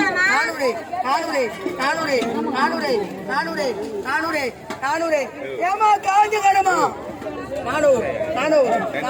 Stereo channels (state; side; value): identical; both; correlation 1.00